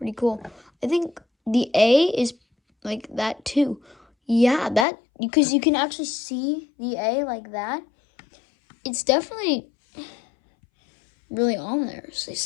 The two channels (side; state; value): right; drops out; at 4.9 s